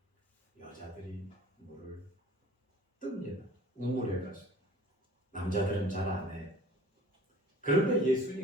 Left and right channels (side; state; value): both; normal; correlation 0.47